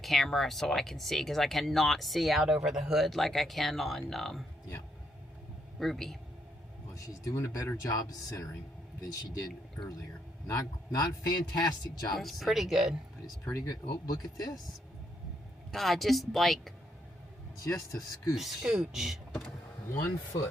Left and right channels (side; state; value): both; normal; correlation 0.75